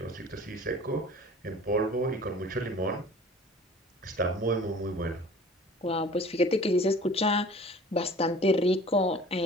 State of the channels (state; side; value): normal; both; correlation 0.46